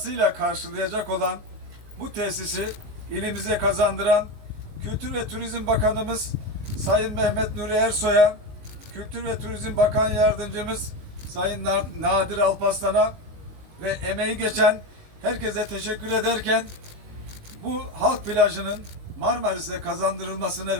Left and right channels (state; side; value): late; left; 19 ms